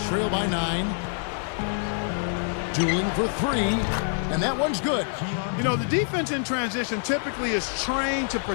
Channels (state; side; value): silent; right; 61 dB below the other